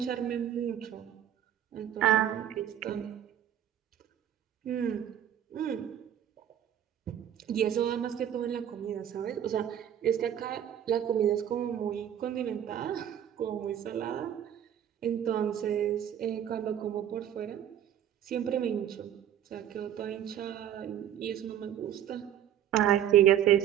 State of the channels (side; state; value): left; quieter; 10.3 dB